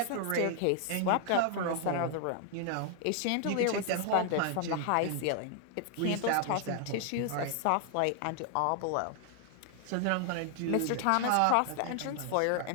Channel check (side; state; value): both; different; correlation 0.00